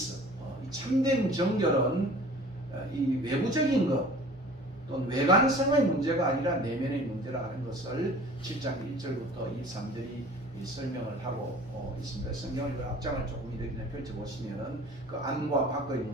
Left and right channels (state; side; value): normal; both; correlation 0.46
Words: 이 참된 정결은 이 외부적인 것 또는 외관성의 문제가 아니라 내면의 문제라 하는 것을 7장 1절부터 23절이 설명을 하고 있습니다. 성경을 앞장을 조금 이렇게 펼쳐보시면은 그 안과 밖의